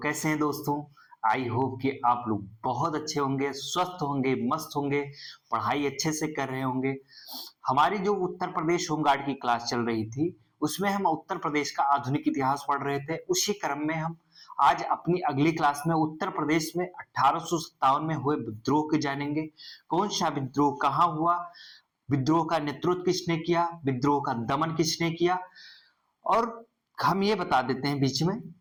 कैसे हैं दोस्तों? आई होप कि आप लोग बहुत अच्छे होंगे, स्वस्थ होंगे, मस्त होंगे, पढ़ाई अच्छे से कर रहे होंगे। हमारी जो उत्तर प्रदेश होमगार्ड की क्लास चल रही थी उसमें हम उत्तर प्रदेश का आधुनिक इतिहास पढ़ रहे थे। उसी क्रम में हम आज अपनी अगली क्लास में उत्तर प्रदेश में 1857 में हुए विद्रोह के जानेंगे। कौन सा विद्रोह कहाँ हुआ, विद्रोह का नेतृत्व किसने किया, विद्रोह का दमन किसने किया। और हम ये बता देते हैं बीच में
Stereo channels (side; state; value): both; identical; correlation 1.00